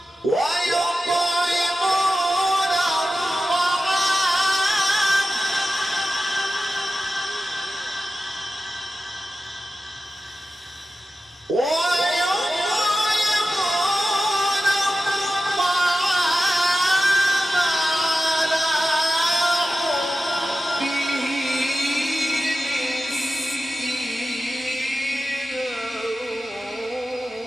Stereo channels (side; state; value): both; normal; correlation 0.93